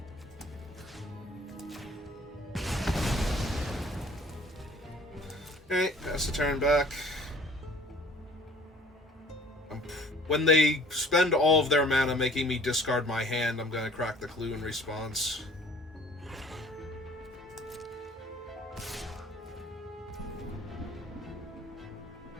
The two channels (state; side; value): normal; both; correlation 0.52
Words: Okay, pass the turn back. When they spend all of their mana making me discard my hand, I'm gonna crack the clue in response.